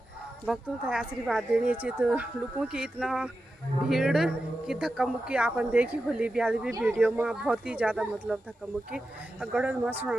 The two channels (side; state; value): both; normal; correlation 0.91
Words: भक्तों का आशीर्वाद देनी चाहिए। तो लोगों की इतना भीड़ की धक्का मुक्की आपन देखी होली ब्याल भी वीडियो में, बहुत ही ज़्यादा मतलब धक्का मुक्की गढ़ में